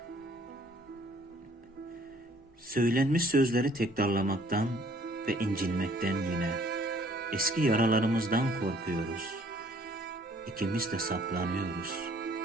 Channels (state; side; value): normal; both; correlation 0.59